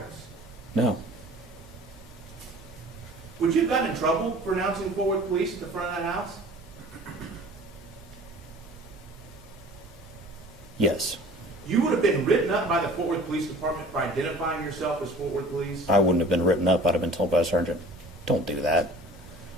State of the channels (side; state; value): both; normal; correlation 0.45